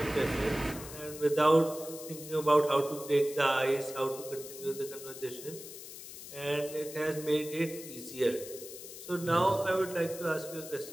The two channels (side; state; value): left; noise; hiss, 13 dB below the sound